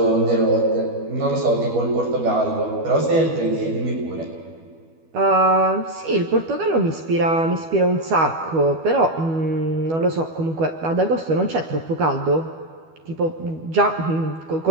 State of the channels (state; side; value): late; left; 12 ms